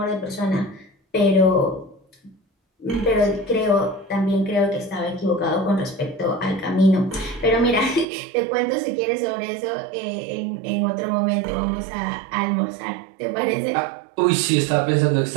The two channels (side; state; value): left; drops out; at 8.1 s